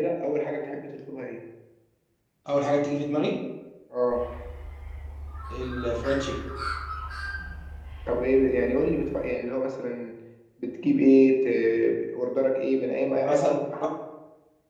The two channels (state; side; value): identical; both; correlation 1.00